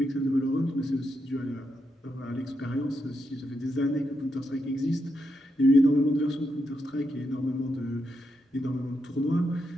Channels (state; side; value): normal; both; correlation 0.83